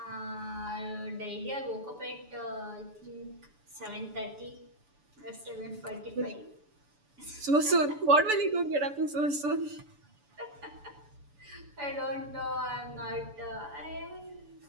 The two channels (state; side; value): late; left; 7.0 ms